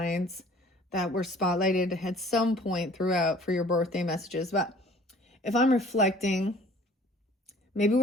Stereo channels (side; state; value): both; normal; correlation 0.51